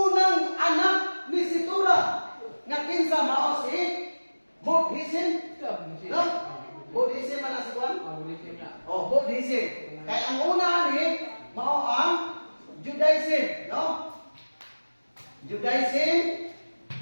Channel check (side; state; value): both; inverted; correlation -1.00